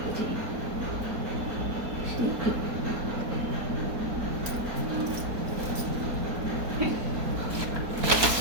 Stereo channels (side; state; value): left; late; 4.3 ms